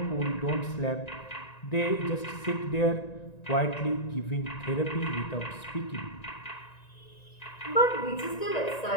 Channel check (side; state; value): right; late; 1.9 ms